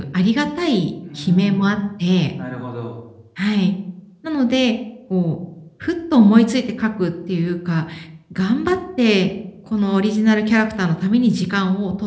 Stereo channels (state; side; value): identical; both; correlation 1.00